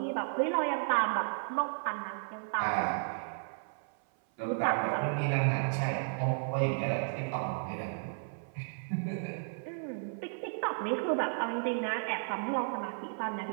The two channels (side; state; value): left; silent; 55 dB below the other